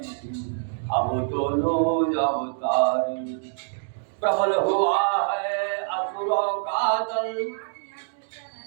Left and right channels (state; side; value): silent; left; digital silence